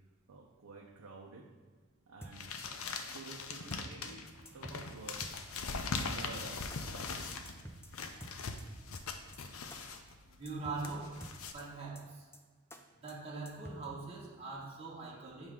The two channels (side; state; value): both; normal; correlation 0.26